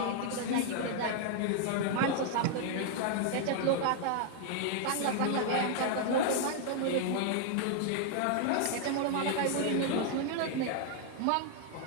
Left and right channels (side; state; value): both; different; correlation 0.00